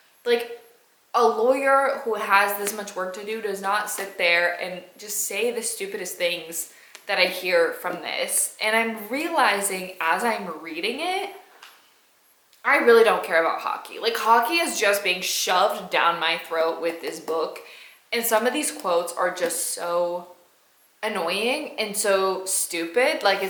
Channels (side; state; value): both; identical; correlation 1.00